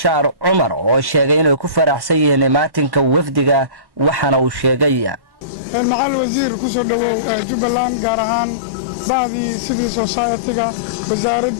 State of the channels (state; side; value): late; left; 1.1 ms